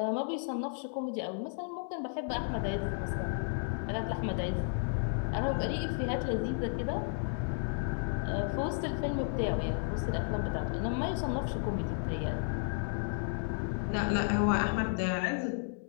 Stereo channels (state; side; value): silent; right; 56 dB below the other